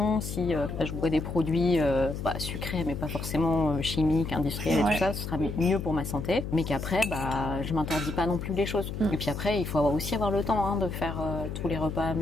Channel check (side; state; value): left; noise; hum, 6 dB below the sound